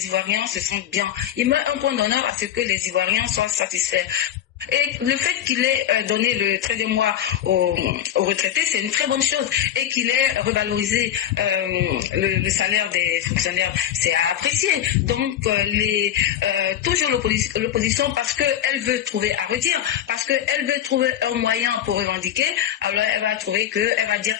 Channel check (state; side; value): quieter; right; 10.8 dB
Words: Ivoiriens se sentent bien. Il met un point d'honneur à ce que les Ivoiriens soient satisfaits. Et le fait qu'il ait donné le 13e mois aux retraités, c'est une très bonne chose. Et qu'il ait revalorisé le salaire des fonctionnaires, c'est à apprécier. Donc, toujours l'opposition, parce qu'elle veut trouver à redire, parce qu'elle veut trouver un moyen pour revendiquer, alors elle va dire